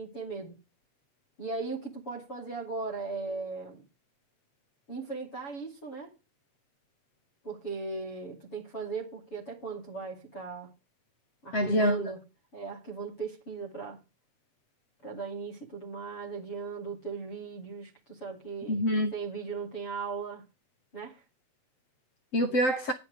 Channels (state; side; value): late; right; 7.7 ms